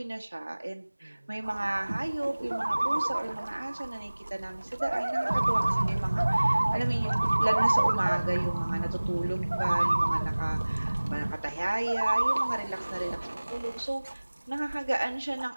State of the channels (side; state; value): both; inverted; correlation -1.00